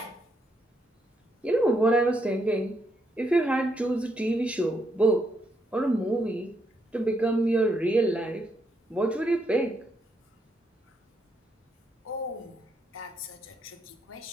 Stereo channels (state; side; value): normal; both; correlation 0.78